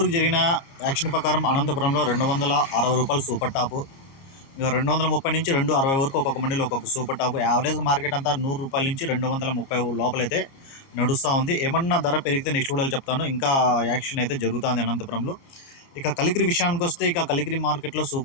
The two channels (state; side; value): late; right; 30 ms